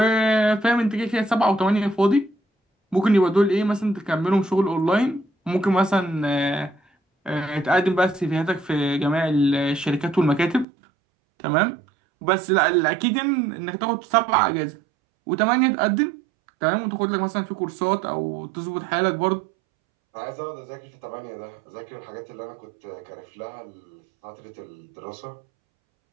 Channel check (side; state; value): left; drops out; at 10.7 s